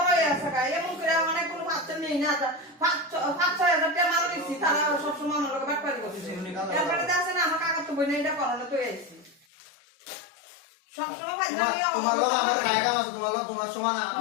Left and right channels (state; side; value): drops out; right; at 9.5 s